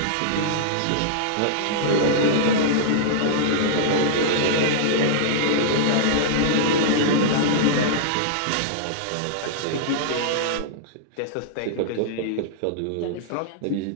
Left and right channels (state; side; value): different; both; correlation -0.02